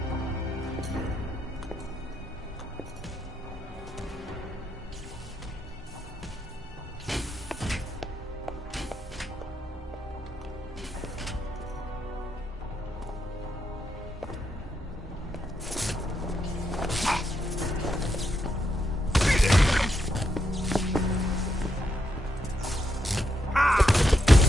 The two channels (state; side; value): normal; both; correlation 0.81